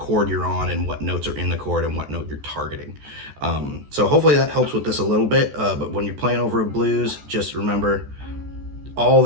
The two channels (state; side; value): late; left; 14 ms